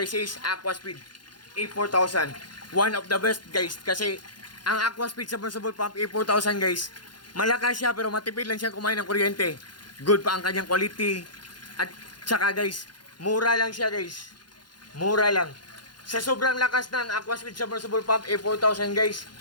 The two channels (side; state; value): right; late; 0.71 ms